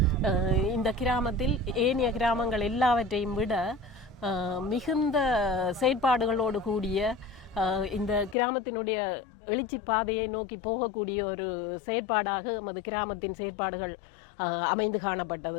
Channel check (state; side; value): drops out; right; at 8.3 s